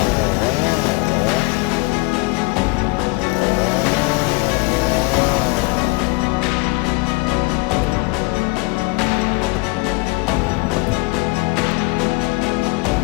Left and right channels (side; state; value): right; quieter; 26.0 dB